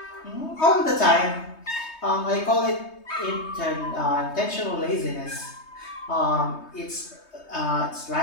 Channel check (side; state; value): right; late; 3.2 ms